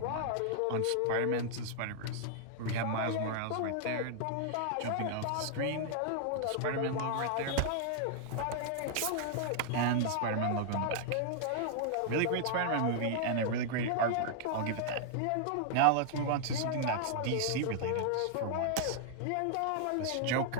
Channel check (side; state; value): both; different; correlation -0.01